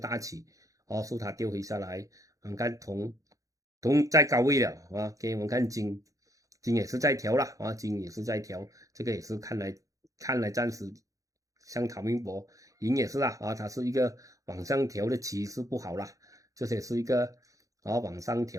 起所以它掉回下来。我们看铜在高位了OK， 我们看金也是在调了金也是在调，这个也是看来暂时像唐明博银也是它是一个往上调的趋势不好啦，这些是一个往上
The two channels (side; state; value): left; late; 0.16 ms